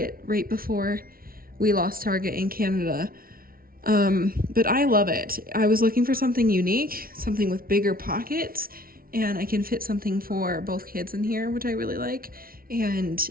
right before we lost Target in Canada. But I love it. I was looking for something unique, something with bigger pockets, and I can fit something for both kids in here, which I really like. And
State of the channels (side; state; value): left; late; 0.43 ms